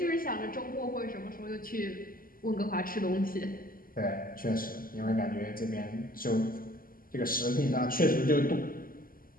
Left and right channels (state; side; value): late; right; 0.42 ms